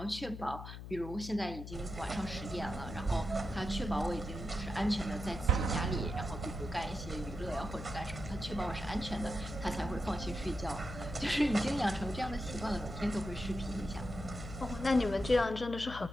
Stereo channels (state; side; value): noise; left; hum, 10 dB below the sound